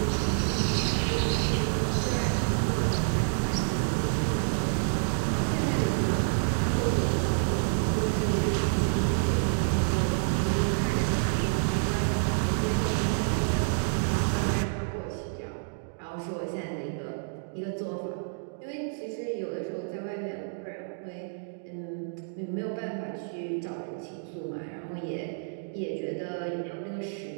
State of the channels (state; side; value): silent; left; digital silence